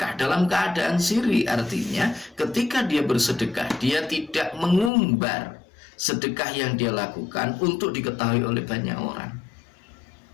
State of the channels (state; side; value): drops out; right; at 4.9 s